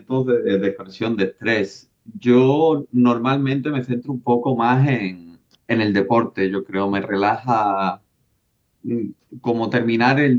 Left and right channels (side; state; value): both; identical; correlation 1.00